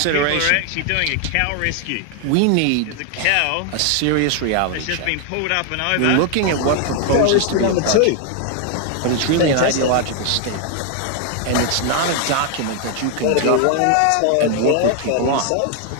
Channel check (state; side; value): different; both; correlation 0.01